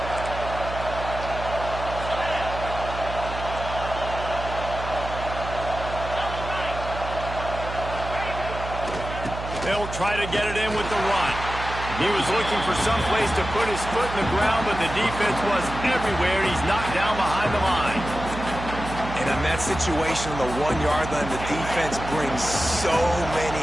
They'll try to get it in with the run. He was looking for some place to put his foot in the ground, but the defense was everywhere. He's knocked down behind the line. And in that situation on the 1-yard line, the defense brings so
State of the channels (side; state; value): right; noise; hum, 8 dB below the sound